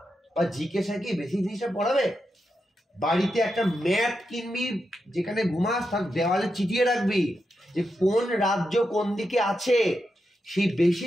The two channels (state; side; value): normal; both; correlation 0.86